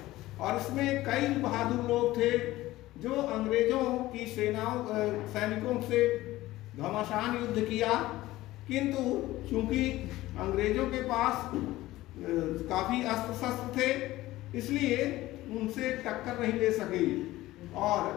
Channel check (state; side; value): quieter; right; 16.9 dB